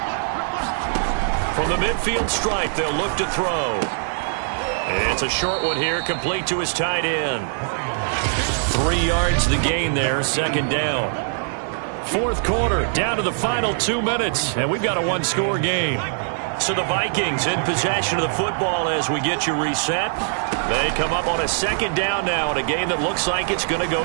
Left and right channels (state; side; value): silent; left; digital silence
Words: From the midfield stripe, they'll look to throw. It's a short one here, complete to his tight end. 3 yards the gain there, 2nd down. 4th quarter, down to the final 2 minutes, and we've got a 1-score game. So the Vikings in possession of the football as we get you reset. They come up on a 2nd down now in a game that looks like it's going to